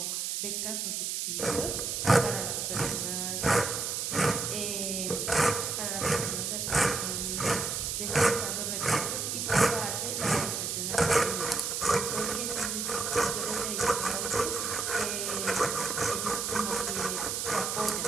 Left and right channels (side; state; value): right; noise; hiss, 1 dB below the sound